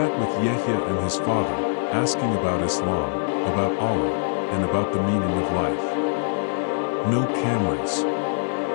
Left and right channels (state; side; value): silent; right; digital silence